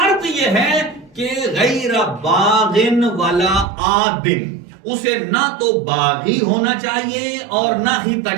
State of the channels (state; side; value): drops out; left; at 3.7 s